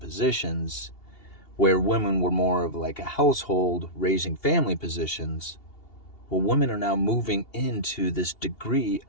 where women were more of a household raising family positions. Well, women are now moving into this degree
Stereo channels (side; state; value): right; late; 2.8 ms